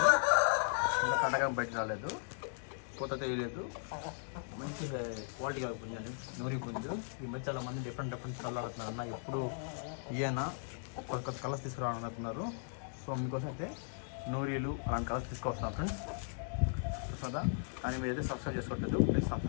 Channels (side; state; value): right; silent; digital silence